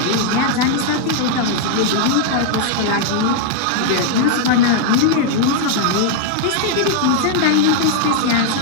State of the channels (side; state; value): both; different; correlation 0.00